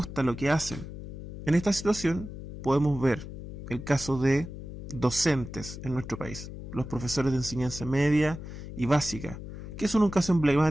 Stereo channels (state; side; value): noise; left; hum, 10 dB below the sound